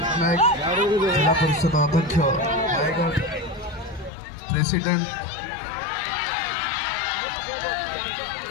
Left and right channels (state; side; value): drops out; right; at 4.1 s